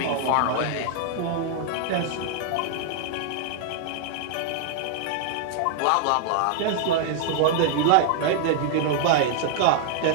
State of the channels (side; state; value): both; different; correlation -0.01